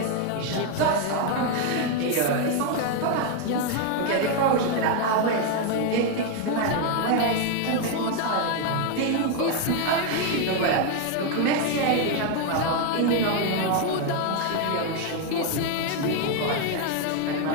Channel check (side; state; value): both; different; correlation 0.01